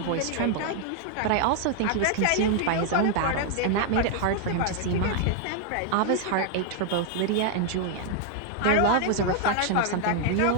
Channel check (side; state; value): both; different; correlation 0.00